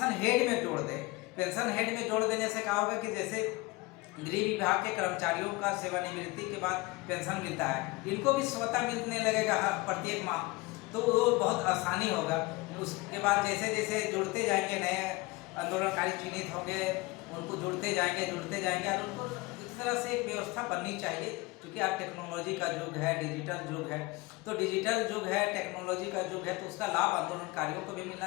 हेड में जोड़ दे। पेंशन हेड में जोड़ देने से क्या होगा कि जैसे गृह विभाग के कर्मचारियों का सेवानिवृत्ति के बाद पेंशन मिलता है, इनको भी स्वतः मिलने लगेगा प्रत्येक माह, तो वो बहुत आसानी होगा। उसके बाद जैसे जैसे जुड़ते जाएंगे नए आंदोलनकारी चिन्हित होंगे, उनको जुड़ते जाएंगे और उनको इस तरह से एक व्यवस्था बननी चाहिए। क्योंकि आज टेक्नोलॉजी का युग है, डिजिटल युग है, तो डिजिटल युग है, टेक्नोलॉजी का युग है, तो उसका लाभ आंदोलनकारियों को भी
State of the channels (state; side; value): quieter; right; 22.8 dB